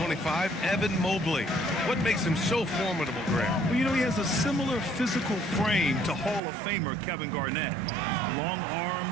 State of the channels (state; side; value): drops out; left; at 6.4 s